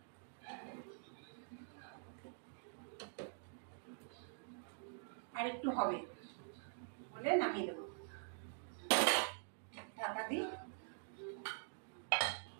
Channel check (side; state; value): left; silent; digital silence